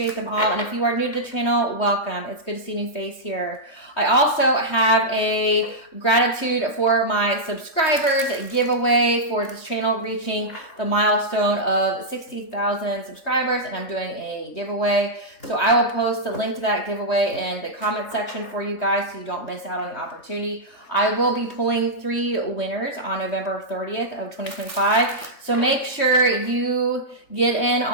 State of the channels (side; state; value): right; late; 3.2 ms